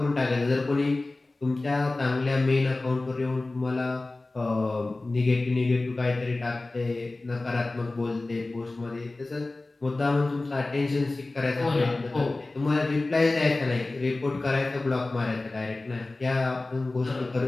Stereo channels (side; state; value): right; quieter; 3.1 dB